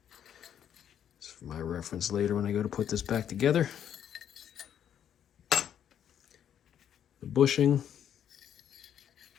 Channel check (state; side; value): quieter; right; 9.4 dB